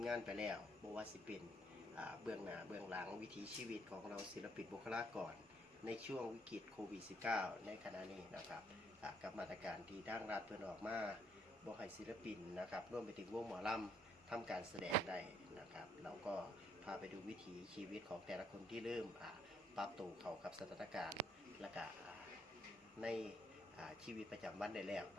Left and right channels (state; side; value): normal; both; correlation 0.70